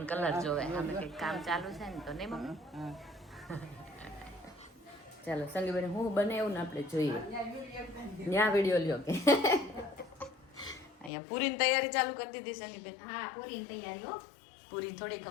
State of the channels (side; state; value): right; drops out; at 11.1 s